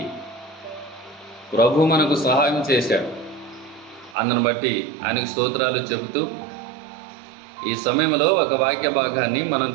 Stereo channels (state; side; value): drops out; left; at 4.2 s